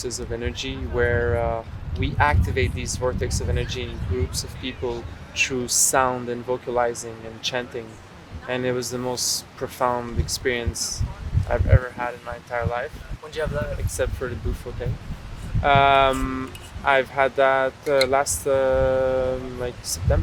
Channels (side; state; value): both; identical; correlation 1.00